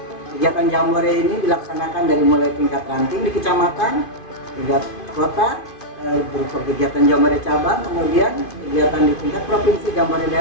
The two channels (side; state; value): right; late; 2.5 ms